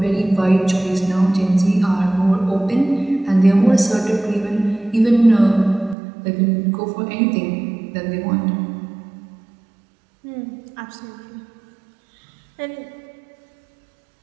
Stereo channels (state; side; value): drops out; left; at 6.0 s